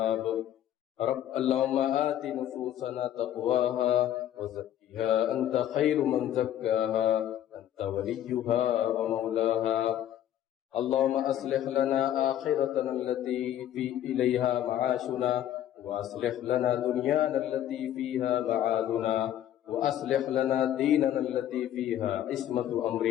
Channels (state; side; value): quieter; right; 11.6 dB